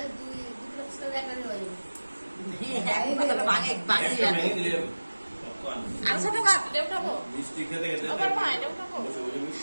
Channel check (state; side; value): inverted; both; correlation -1.00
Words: দুই দুটো একটা নিয়ে যাবে ভাঙে ভাঙে नहीं दिले कौन আর ছোট কাপ উঠাবো मिस्टी खेते खेते আবার মা এটা উঠাবো